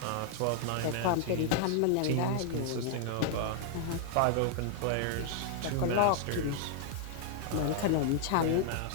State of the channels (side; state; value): both; different; correlation 0.00